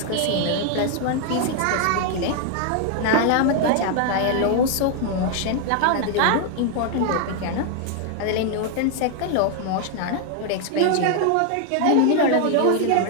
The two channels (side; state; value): both; different; correlation 0.00